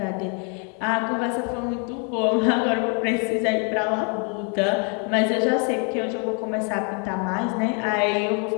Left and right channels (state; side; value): quieter; right; 38.9 dB